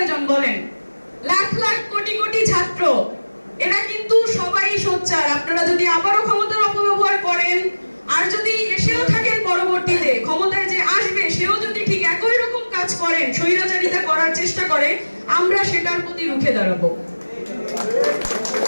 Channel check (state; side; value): inverted; both; correlation -1.00